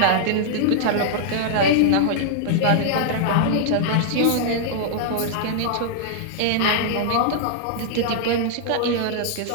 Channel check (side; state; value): both; different; correlation -0.01